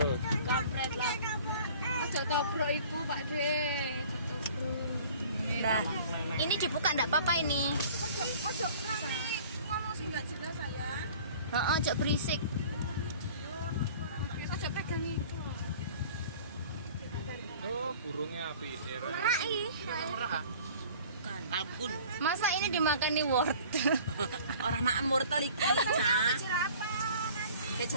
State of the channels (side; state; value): both; inverted; correlation -0.47